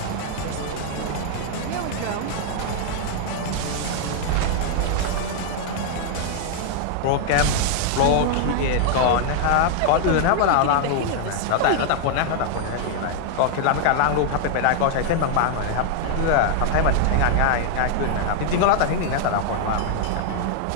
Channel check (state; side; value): different; both; correlation 0.00